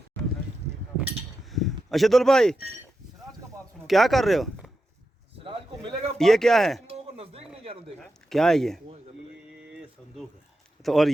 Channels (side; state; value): both; normal; correlation 0.89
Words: अशदुल भाई क्या कर रहे हो? सिराज को मिलेगा ये क्या है? तुम लोगों को नजदीक नहीं जाने देगा। क्या है ये संदूक है। तो और